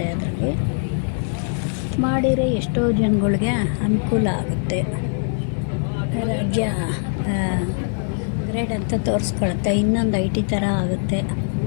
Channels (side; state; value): right; silent; 61 dB below the other